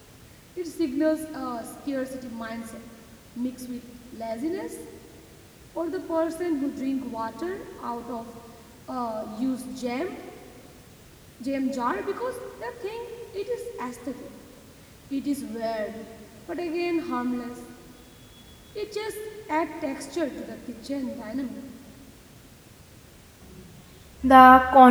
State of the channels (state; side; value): identical; both; correlation 1.00